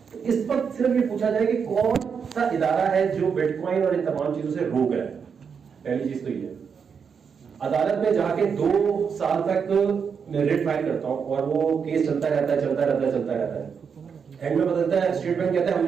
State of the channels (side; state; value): left; quieter; 6.5 dB